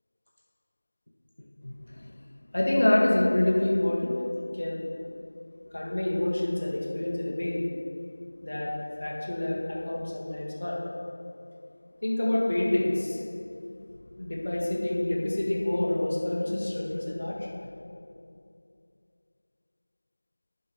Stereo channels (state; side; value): inverted; both; correlation -1.00